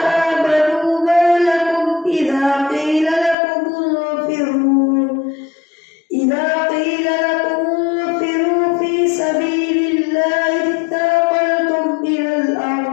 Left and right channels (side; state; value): right; drops out; at 3.4 s